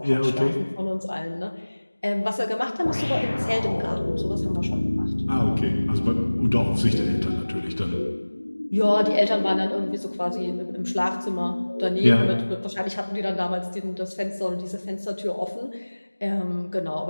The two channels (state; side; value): inverted; both; correlation -1.00